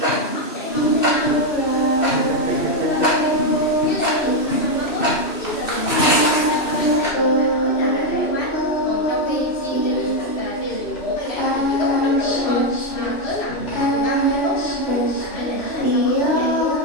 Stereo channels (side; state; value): right; late; 2.6 ms